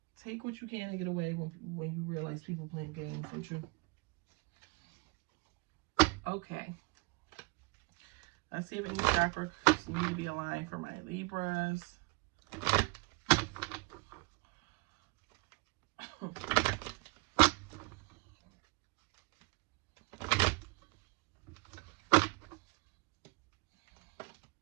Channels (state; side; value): quieter; left; 27.9 dB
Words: Take what you can and get away when you realize people playing games with you. Okay. Let's see if any chakra need to be aligned for my Libras.